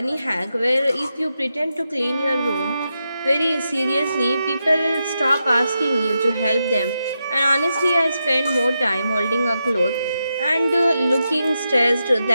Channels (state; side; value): inverted; both; correlation -0.87